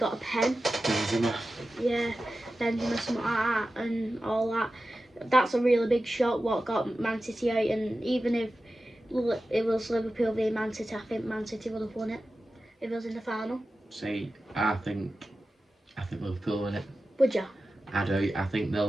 a pen. Benzema. Yeah, Benzema, something like that, and all that. that's a really big shock what got Man City out, and even if it was Liverpool v Man City, I think Man City would have won it if it was in the final. See, I think Liverpool win it. Would you? I do. I think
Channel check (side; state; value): both; normal; correlation 0.94